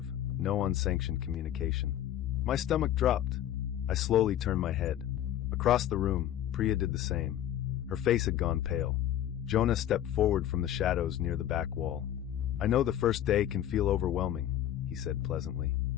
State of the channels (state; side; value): quieter; right; 11.6 dB